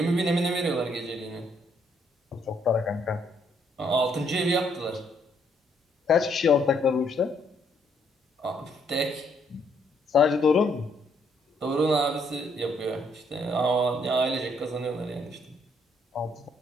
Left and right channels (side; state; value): both; normal; correlation 0.70